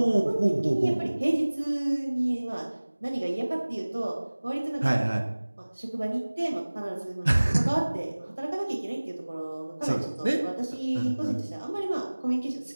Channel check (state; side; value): inverted; both; correlation -1.00